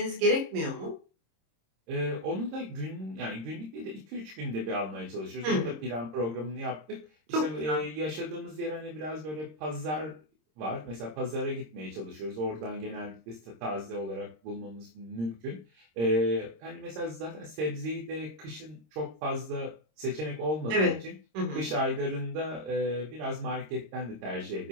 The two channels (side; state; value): left; late; 26 ms